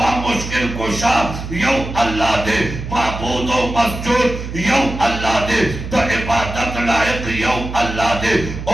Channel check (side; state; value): right; noise; hum, 8 dB below the sound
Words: मुश्किल कुशा यौ अल्लाह दे माबूद व मस्जूद यौ अल्लाह दे तो इबादत लाइक यौ अल्लाह दे।